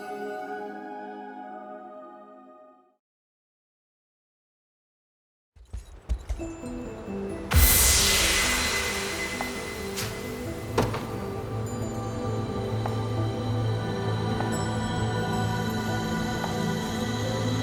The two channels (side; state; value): both; identical; correlation 1.00